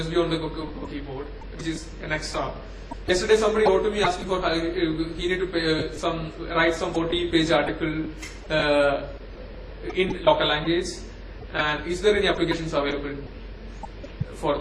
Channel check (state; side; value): identical; both; correlation 1.00